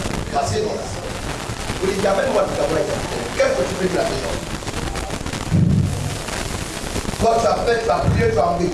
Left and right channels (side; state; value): both; identical; correlation 1.00